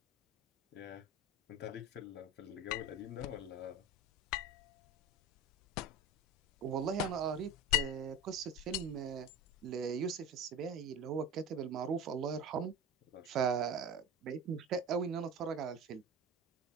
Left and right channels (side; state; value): both; normal; correlation 0.31